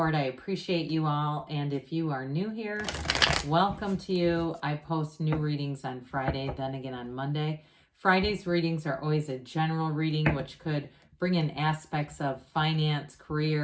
I appreciate you all. And if you are new here, welcome to you. I post new readings on Friday, then again on Monday. Friday's readings are always a general reading, which could bring in aspects of finance,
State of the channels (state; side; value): identical; both; correlation 1.00